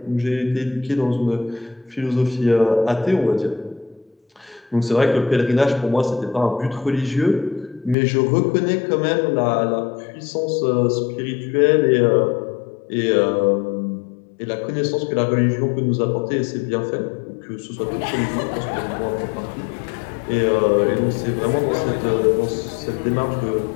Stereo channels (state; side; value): drops out; right; at 8.0 s